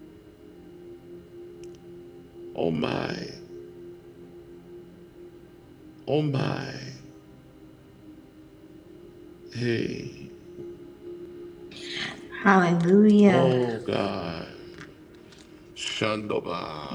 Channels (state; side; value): identical; both; correlation 1.00